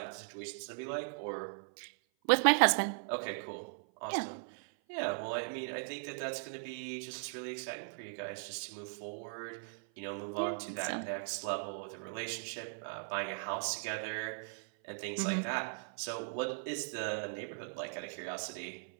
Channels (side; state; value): left; silent; 52 dB below the other